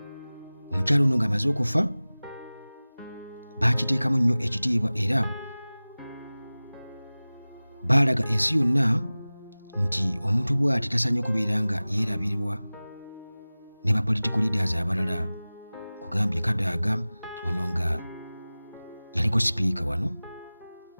omukyalo ono ng'amaze okufa baakiteekamu nnyo ekitiibwa era baalaga ensi yonna nti omuntu bw'ati tasaanye kubeera nga yeerabirwa ne ba political leaders abalala. Kugambye Kadaga ono nga yaliko sipiika wano,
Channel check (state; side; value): inverted; both; correlation -0.98